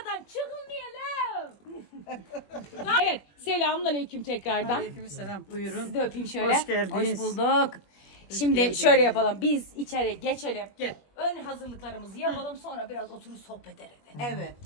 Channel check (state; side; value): late; right; 21 ms